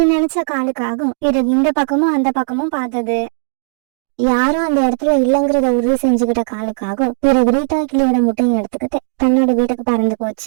நினைச்ச காலுக்காகவும் பிறகு இந்த பக்கமும் அந்த பக்கமும் பார்த்தது. யாரும் அந்த இடத்துல இல்லைங்கிறத உறுதி செஞ்சுக்கிட்ட காலுக்காக பிறகு ரீட்டா கிளியோட முட்டையை எடுத்துக்கிட்டு தன்னோட வீட்டுக்கு பறந்து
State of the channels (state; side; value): silent; left; digital silence